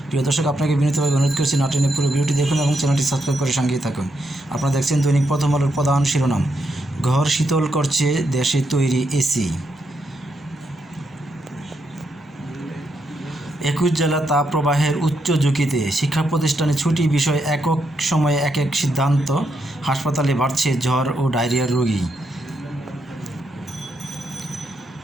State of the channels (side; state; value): both; normal; correlation 0.80